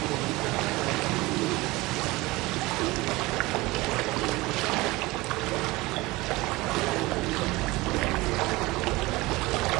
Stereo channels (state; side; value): quieter; left; 21.3 dB